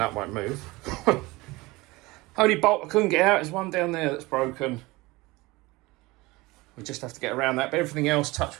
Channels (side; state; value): left; quieter; 21.8 dB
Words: won't move. Only bolt I couldn't get out is one down there that's broken. We just have to get around that, but everything else,